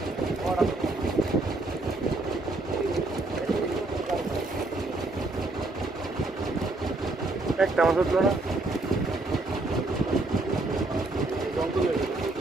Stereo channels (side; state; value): left; quieter; 3.0 dB